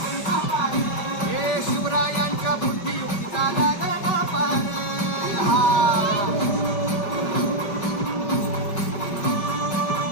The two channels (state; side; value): late; right; 5.1 ms